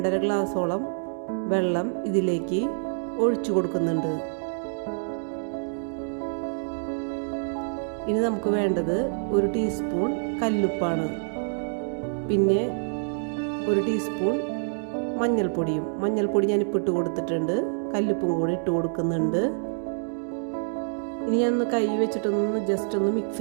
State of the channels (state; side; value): silent; left; digital silence